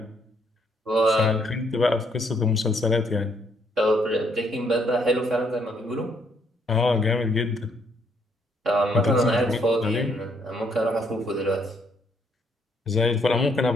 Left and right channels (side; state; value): both; normal; correlation 0.70